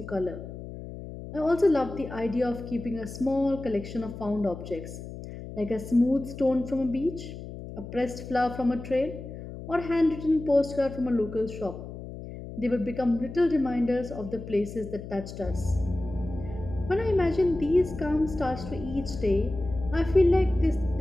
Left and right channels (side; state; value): left; noise; hum, 11 dB below the sound